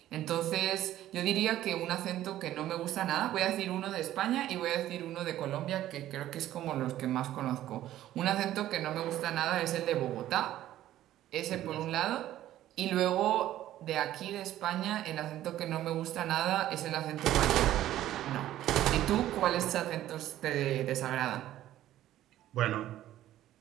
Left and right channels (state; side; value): quieter; left; 13.4 dB